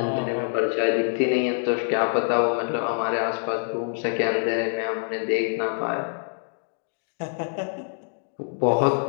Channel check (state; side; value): silent; right; 60 dB below the other